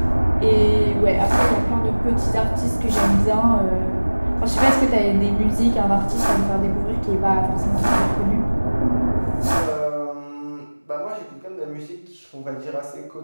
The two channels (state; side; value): inverted; both; correlation -1.00